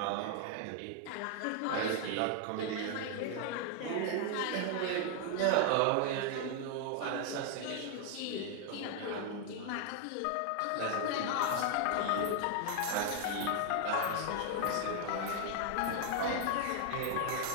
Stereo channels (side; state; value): both; different; correlation 0.00